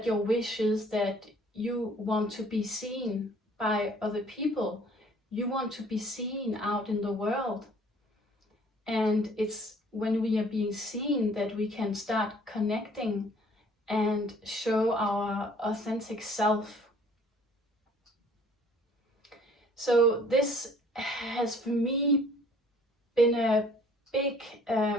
your wish is that you want to be seen by other people. You want to be seen out in the world. And it's when we are being seen that we can start connecting and show our authentic self. So this has for me been a big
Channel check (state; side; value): normal; both; correlation 0.56